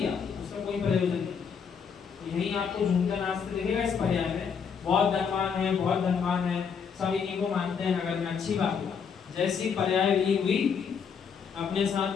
उसका कोई प्रयोजन नहीं। यही आपको झूमते नाचते दिखेगा इस पर्याय में। बहुत धनवान है, बहुत धनवान है, सब इन्हीं को मानते हैं नगर में, अच्छी बात है। जैसी पर्याय विलीन हुई, अपने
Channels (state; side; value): quieter; right; 6.6 dB